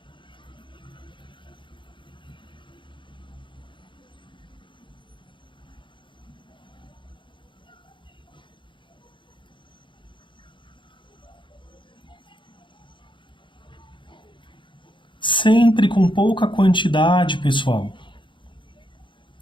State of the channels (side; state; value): right; late; 0.23 ms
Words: Sempre com pouca quantidade, pessoal.